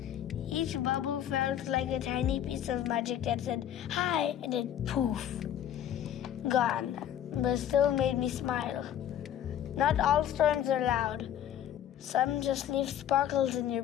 Each bubble felt like a tiny piece of magic that said, hi, and then poof. gone, but still made me smile. Not all storms are loud. Some just leave sparkles in your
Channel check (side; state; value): right; quieter; 10.5 dB